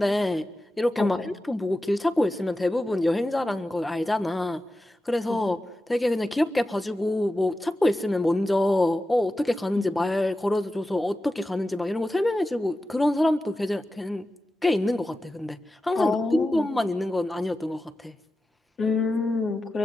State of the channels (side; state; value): both; normal; correlation 0.93